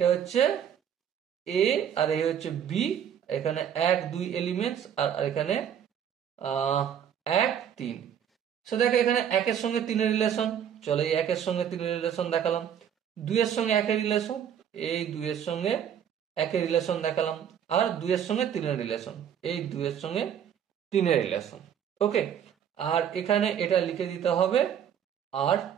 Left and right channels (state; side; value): quieter; left; 9.0 dB